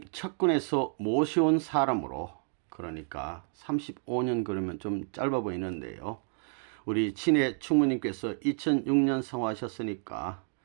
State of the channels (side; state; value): left; silent; 58 dB below the other